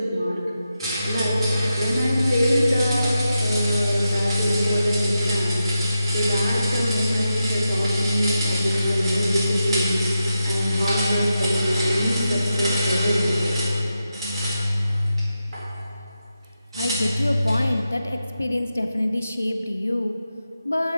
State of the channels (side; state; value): both; inverted; correlation -0.88